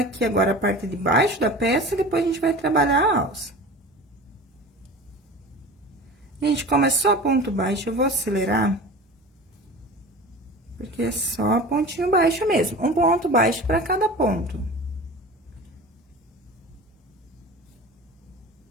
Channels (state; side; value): normal; both; correlation 0.36